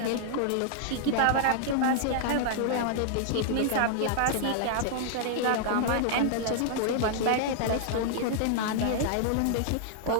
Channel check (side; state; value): both; different; correlation -0.01